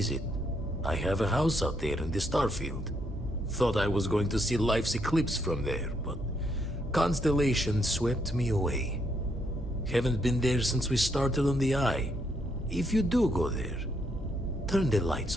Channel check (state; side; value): normal; both; correlation 0.75